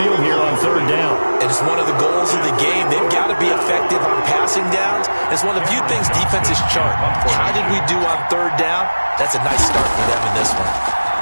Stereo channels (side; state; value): both; inverted; correlation -1.00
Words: here on 3rd down. And it's one of the goals of the game. They've got to be effective on passing downs. It's one of the few things defenses chart. How did we do on 3rd down? That's a nice start for them in this